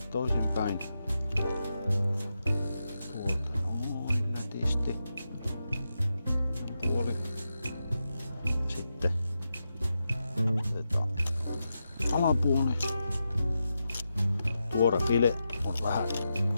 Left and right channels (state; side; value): inverted; both; correlation -0.88